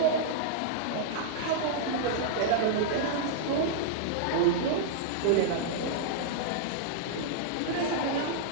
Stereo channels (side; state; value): both; different; correlation -0.02